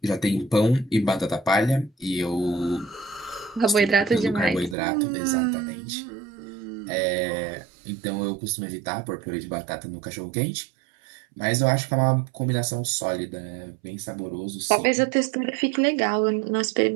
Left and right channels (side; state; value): left; drops out; at 4.8 s